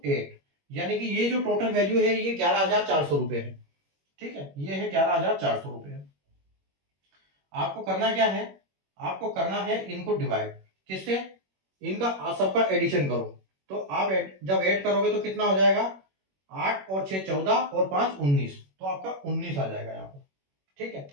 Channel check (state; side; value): late; left; 21 ms